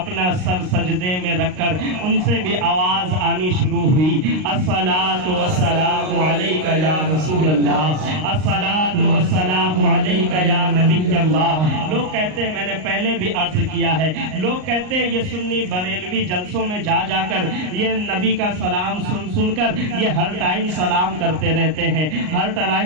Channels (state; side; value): late; left; 38 ms